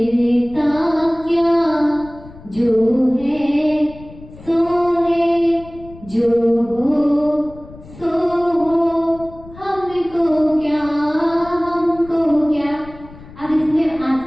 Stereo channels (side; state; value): left; noise; rumble, 19 dB below the sound